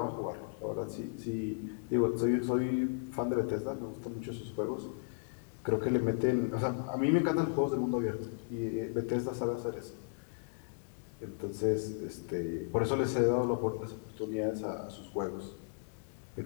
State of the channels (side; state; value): right; silent; digital silence